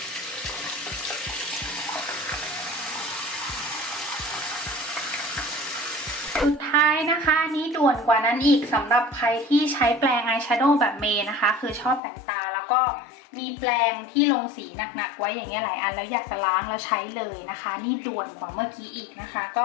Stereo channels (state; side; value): drops out; right; at 12.0 s